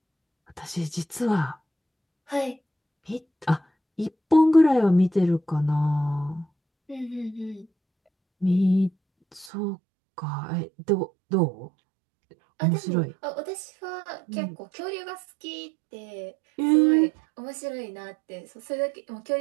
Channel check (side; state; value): left; drops out; at 9.5 s